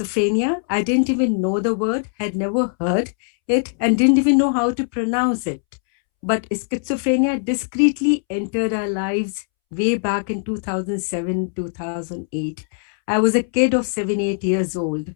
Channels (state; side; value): silent; right; 65 dB below the other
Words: I didn't even know the word, had never heard it, and didn't even know how to pronounce it. But schizophrenia discreetly entered our lives way back in 2007, 2008. I was a kid of 7, 8 years old.